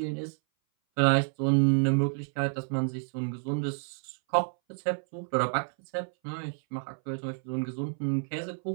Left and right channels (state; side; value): silent; left; 58 dB below the other